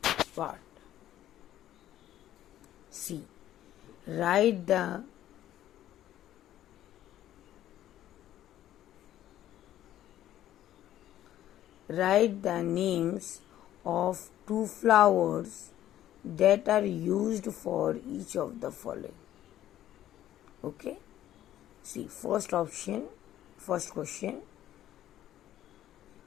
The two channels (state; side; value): quieter; right; 12.5 dB